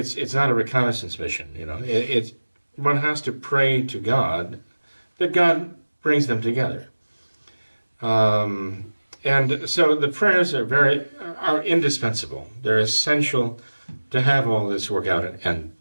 not a reconnaissance mission, one has to pray to God that God brings them together. And so the prayers are indispensable. They're essential to have all this work out and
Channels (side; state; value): both; inverted; correlation -1.00